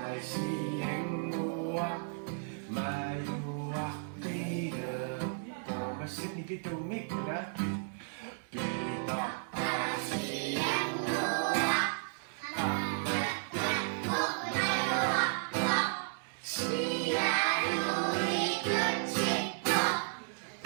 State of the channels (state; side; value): silent; left; digital silence